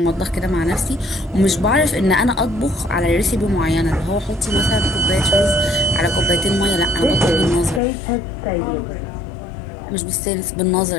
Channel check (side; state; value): right; drops out; at 7.8 s